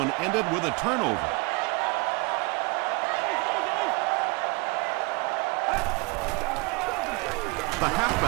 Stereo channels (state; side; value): quieter; left; 27.2 dB